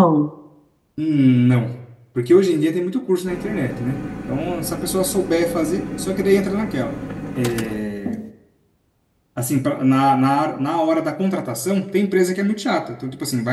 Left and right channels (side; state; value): both; identical; correlation 1.00